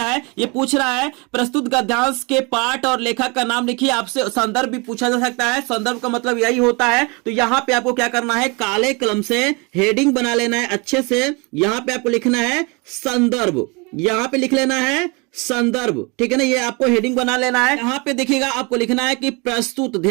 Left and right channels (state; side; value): quieter; left; 29.2 dB